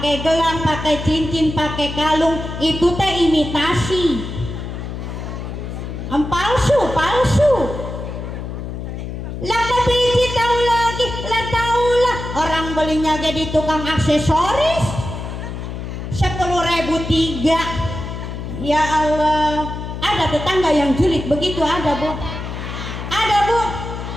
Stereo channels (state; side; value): noise; left; hum, 7 dB below the sound